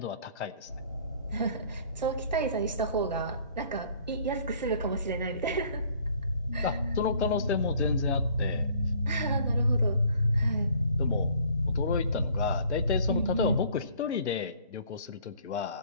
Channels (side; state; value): both; inverted; correlation -0.56